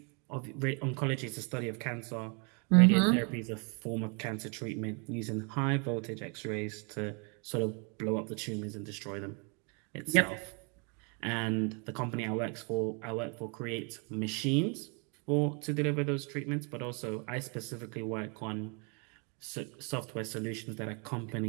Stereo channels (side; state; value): left; quieter; 34.9 dB